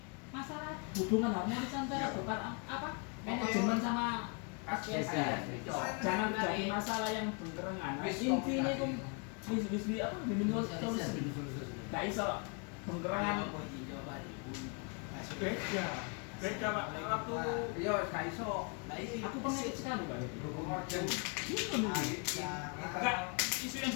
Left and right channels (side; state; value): right; quieter; 35.6 dB